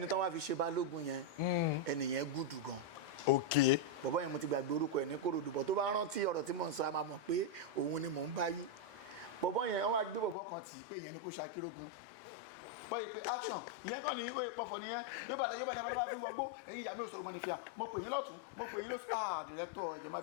tán wá fi ṣe balógun yẹn ẹnìyẹn gùdù gan bọ̀bọ́ yẹn mo ti gbàgbé orúkọ ẹ̀ ní Kòròdú bọ̀ tó bá rántí ọ̀rọ̀ tí mò ń sọ a máa mọ̀ pé òun ni mò ń bá yí bọ̀bọ́ yẹn wọ́n wá gbé bọ̀bọ́ kan tì í pé ìyẹn ni kò ṣakírógun bọ́yì pé action ìyẹn kàn ní oyè pọ̀fọ̀ nìyẹn yóò bá lẹ́bàá fi ń wọgbó ẹ̀yin ìyá mi ò sọ̀rọ̀ mọ́ ní fìyà mo pè yín lọ́tún mo pè yín lọ́sùn director ìjọ má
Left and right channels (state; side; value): drops out; right; at 10.4 s